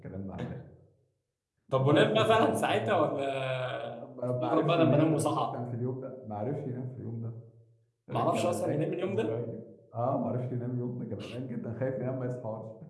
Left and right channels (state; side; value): identical; both; correlation 1.00